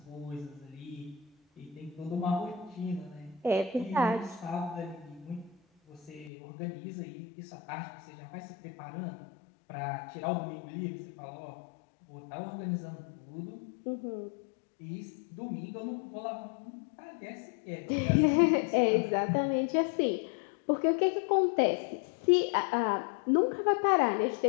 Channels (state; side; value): drops out; right; at 6.3 s